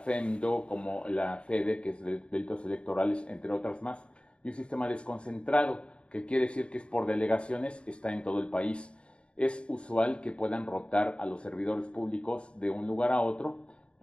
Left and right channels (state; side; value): late; right; 0.057 ms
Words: como la FEDE, que es de delitos electorales, entre otras más, y un sistema desconcentrado, que quiere decir que es por delegaciones, está en todo el país. Es usual que puedan rotar a los servidores públicos de un lugar a otro